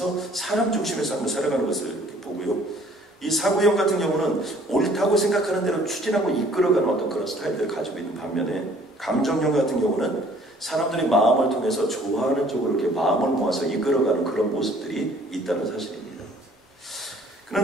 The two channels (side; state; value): both; normal; correlation 0.56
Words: 사람 중심의 삶을 살아가는 것을 이렇게 보고요, 이 사고형 같은 경우는 옳다고 생각하는 대로 추진하고 이끌어가는 어떤 그런 스타일들을 가지고 있는 반면에, 감정형 같은 경우는 사람들의 마음을 통해서 좋아하는 쪽으로 이렇게 마음을 모아서 이끌어가는 그런 모습들이 있다는 사실입니다.